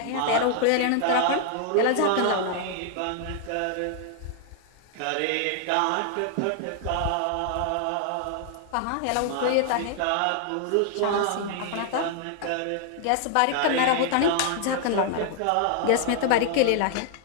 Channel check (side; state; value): both; different; correlation 0.00